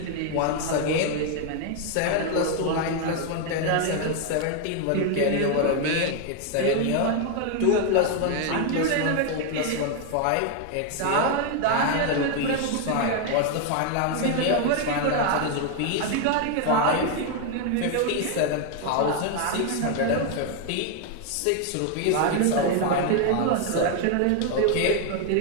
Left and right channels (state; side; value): different; both; correlation 0.01